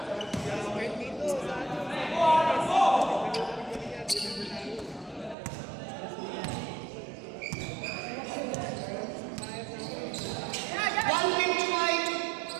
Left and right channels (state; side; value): drops out; left; at 5.4 s